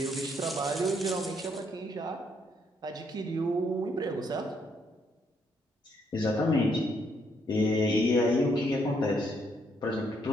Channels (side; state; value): both; normal; correlation 0.72